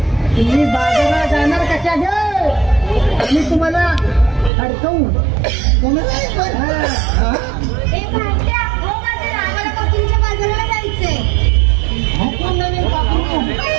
तुम्ही बाजारात जाणार कशा मी तुम्हाला अडकवू. बाजाराला जायचंय.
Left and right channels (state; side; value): drops out; left; at 4.5 s